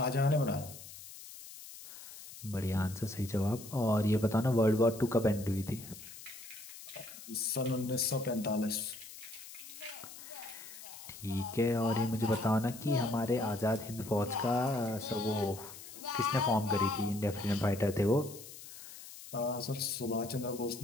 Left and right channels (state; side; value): noise; left; hiss, 15 dB below the sound